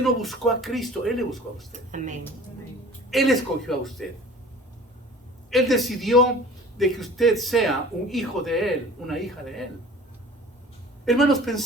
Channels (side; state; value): both; normal; correlation 0.44